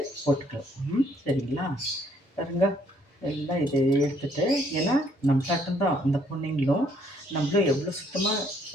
போட்டுக்கலாம். சரிங்களா? பாருங்க, எல்லாம் இதை எடுத்துகிட்டு, ஏன்னா நம்ம தான் அந்த பொண்ணுங்களும் நம்மளும் எவ்வளோ சுத்தமாக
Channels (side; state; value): both; normal; correlation 0.66